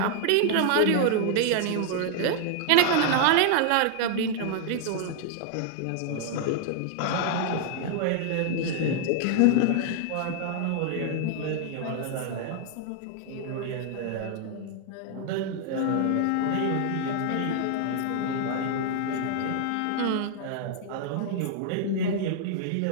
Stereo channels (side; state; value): both; different; correlation 0.00